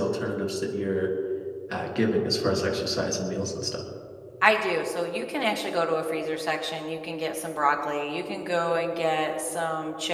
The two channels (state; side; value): identical; both; correlation 1.00